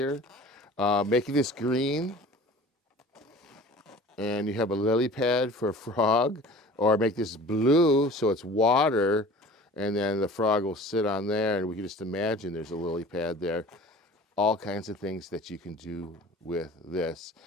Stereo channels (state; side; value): normal; both; correlation 0.43